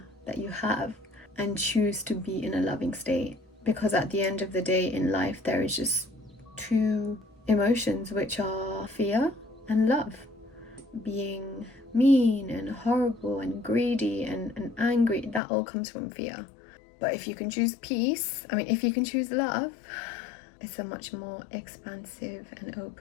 that you have and choose to be in a loving state, because at the end of the day in life there is just two emotions, which are fear and love. Being mean and horrible and greedy and angry, that all comes from fear. But if you can choose peace, if you can choose love, it's a much more expansive and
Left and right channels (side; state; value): right; drops out; at 15.4 s